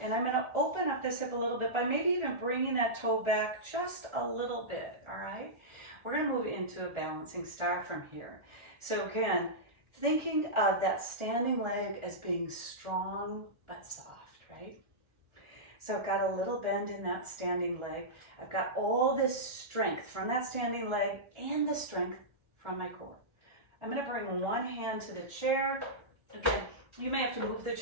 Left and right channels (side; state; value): left; late; 1.4 ms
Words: and I'm going to open up this hip a little bit by maybe even bringing that toe back just a little bit, all right? We're going to move into a balancing star from here. So again, thinking of that standing leg as being strong but soft, right? So I've got a little bend in that standing leg. I've got all this strength from that standing leg and the strength from my core. I'm going to bring one hand to the chair. Again, you may have to move the